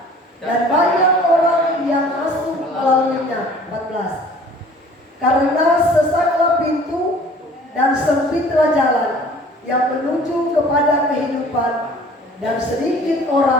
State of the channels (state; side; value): normal; both; correlation 0.50